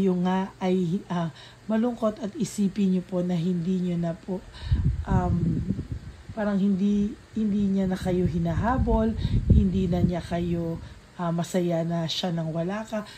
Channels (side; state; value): both; identical; correlation 1.00